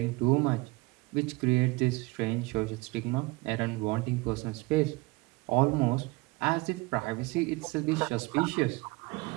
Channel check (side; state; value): left; quieter; 23.6 dB